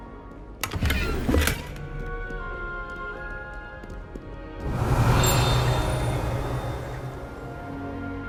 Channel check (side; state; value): both; identical; correlation 1.00